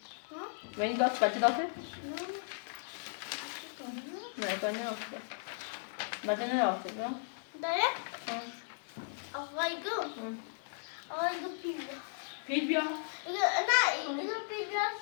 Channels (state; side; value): silent; right; digital silence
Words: و این داته بچه داته؟ نه بانی داته بچه نه داته نه؟ داره؟ آقای گو پیل بیا نه اینو پیل